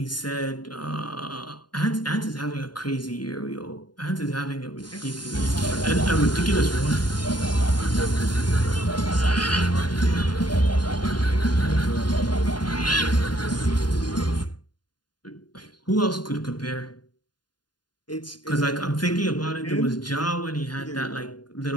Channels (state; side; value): late; right; 0.70 ms